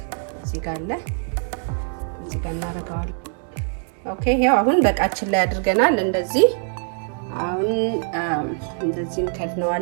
እዚህ ጋር አለ። እዚህ ጋር እናደርገዋለን። ኦኬ ይሄው አሁን በቃችን ላይ አድርገናል። እንደዚህ አሁን እንደዚህ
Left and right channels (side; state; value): left; silent; 56 dB below the other